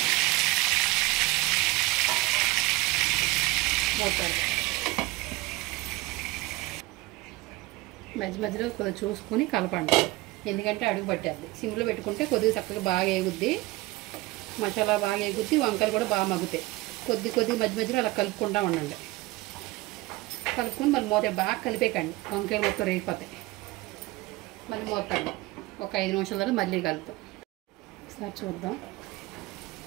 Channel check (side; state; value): left; quieter; 20.5 dB